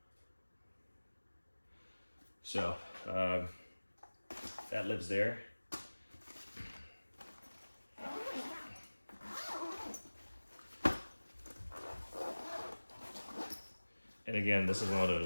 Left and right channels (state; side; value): inverted; both; correlation -1.00